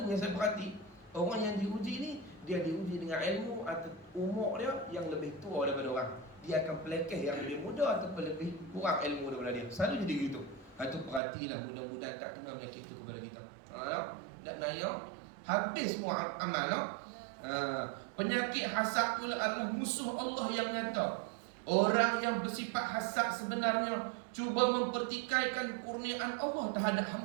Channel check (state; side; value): drops out; left; at 11.2 s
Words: yang saya perhati, orang yang diuji ni, dia diuji dengan ilmu atau umur dia yang lebih tua daripada orang. Dia akan pelekeh yang lebih muda ataupun lebih kurang ilmu daripada dia. Selalu jadi gitu. Itu perhatilah, mudah-mudahan tak kena penyakit itu kepada kita. Tak naya, habis semua amal. Penyakit hasad pula adalah musuh Allah yang nyata. Orang yang bersifat hasad sebenarnya cuba mempertikaikan kurniaan Allah terhadap